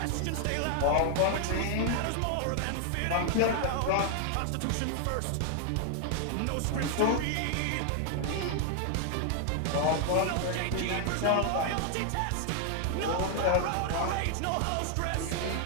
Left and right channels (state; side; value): different; both; correlation 0.00